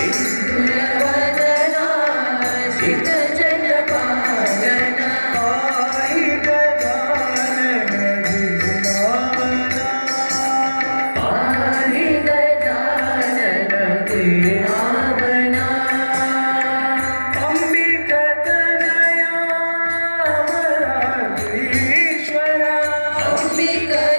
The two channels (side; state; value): both; inverted; correlation -1.00